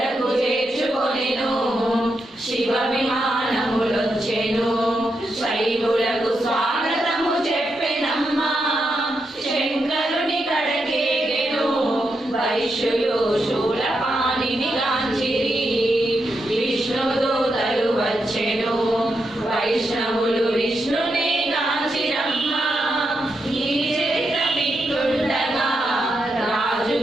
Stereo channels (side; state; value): both; normal; correlation 0.84